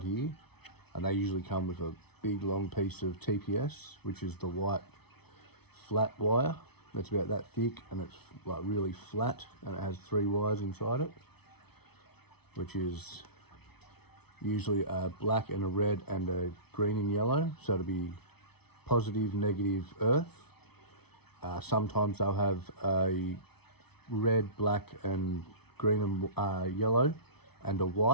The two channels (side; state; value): right; late; 0.98 ms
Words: here, and they usually come with a big long piece of TPS, which is the white flat wire. That's about that thick, and it's like really flat, and it has 3 wires inside it, which is usually a black and a red and a green and yellow, so it'll be positive, negative earth. Sometimes they'll have a red, black and green and yellow and a